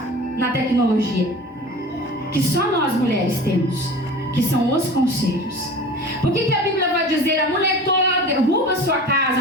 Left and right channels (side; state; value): both; normal; correlation 0.38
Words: na tecnologia, que só nós mulheres temos, que são os conselhos. Por que a Bíblia vai dizer: a mulher tola derruba sua